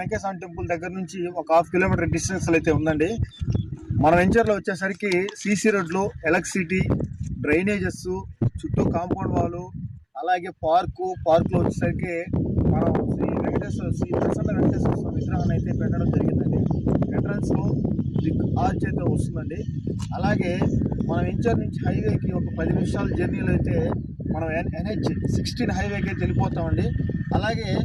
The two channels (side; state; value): both; identical; correlation 1.00